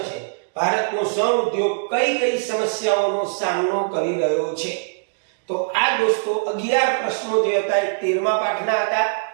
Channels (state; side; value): silent; left; digital silence